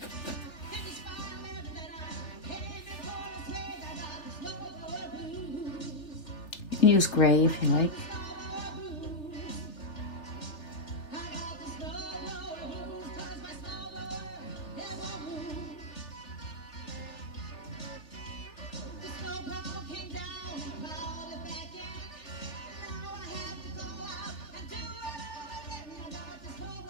You can use gray if you like.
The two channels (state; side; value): late; right; 3.4 ms